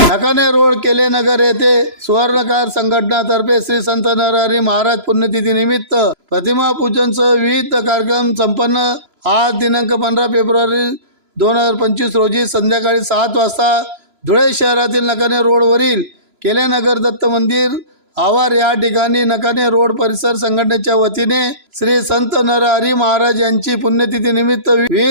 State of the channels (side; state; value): left; late; 3.0 ms